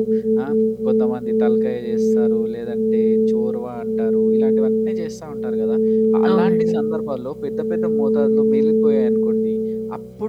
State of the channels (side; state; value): both; identical; correlation 1.00